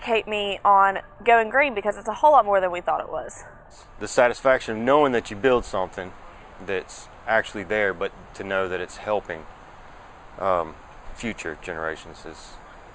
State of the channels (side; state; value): both; identical; correlation 1.00